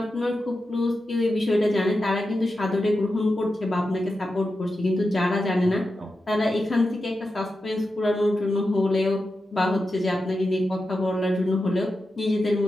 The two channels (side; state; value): both; normal; correlation 0.90